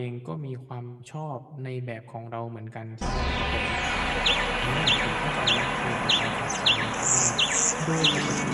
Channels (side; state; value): both; identical; correlation 1.00